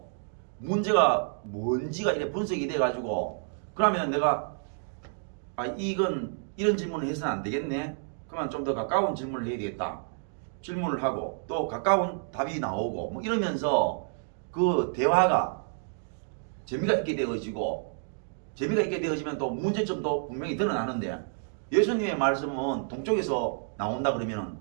문제가 뭔지가 이래 분석이 돼가지고 그러면 내가 이건 이런 질문을 해서는 안 되겠네. 그러면 좀 더 가까운 질문을 해야 되겠다. 질문을 하고 또 가까운 답이 나오고 뭐 이러면서 그 대화가 재미가 있게 되어지면 또 문제점도 분명히 드러나는데 예수님의 말씀은 동쪽에서 나온다 그러면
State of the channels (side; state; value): left; silent; digital silence